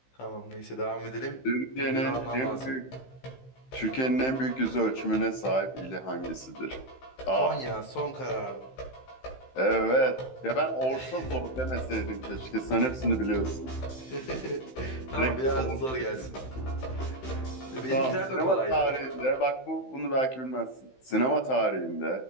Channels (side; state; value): right; late; 15 ms